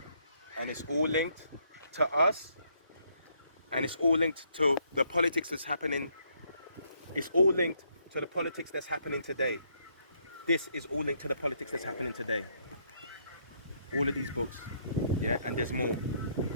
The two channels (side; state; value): both; inverted; correlation -0.71